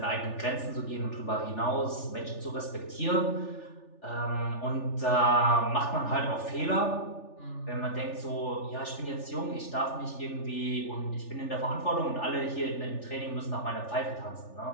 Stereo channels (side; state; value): right; late; 3.4 ms